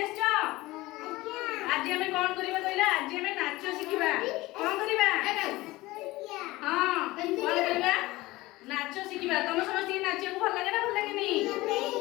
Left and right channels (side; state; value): right; quieter; 19.4 dB